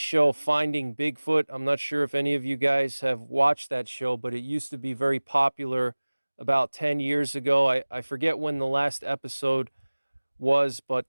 Finding Bigfoot. I'm not sure if any of you guys have watched that show, but it used to be very popular about 10 years ago. I forget when the last episode was, but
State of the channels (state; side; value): inverted; both; correlation -1.00